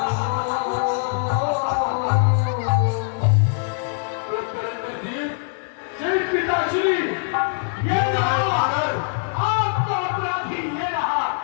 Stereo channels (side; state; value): right; silent; 61 dB below the other